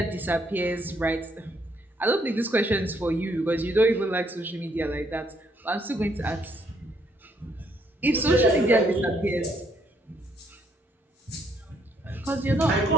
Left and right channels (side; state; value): both; normal; correlation 0.70